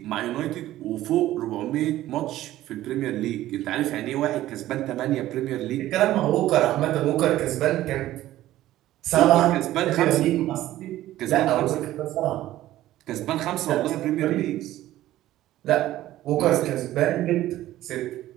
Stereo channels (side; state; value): left; quieter; 14.6 dB